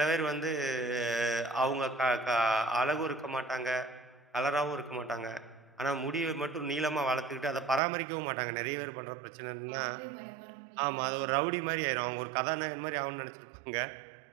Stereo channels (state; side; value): drops out; left; at 7.8 s